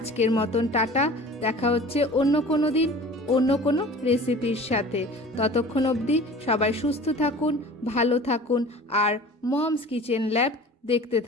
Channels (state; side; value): normal; both; correlation 0.42